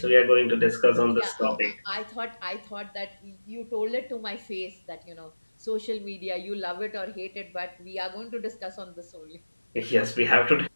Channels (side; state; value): both; inverted; correlation -1.00